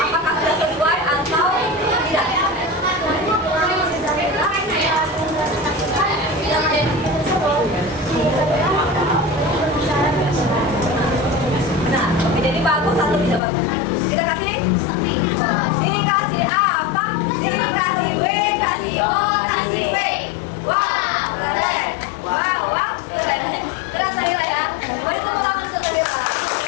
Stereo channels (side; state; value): right; drops out; at 13.4 s